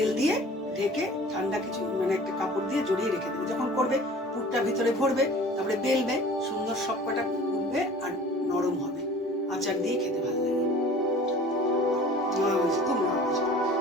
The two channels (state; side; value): normal; both; correlation 0.45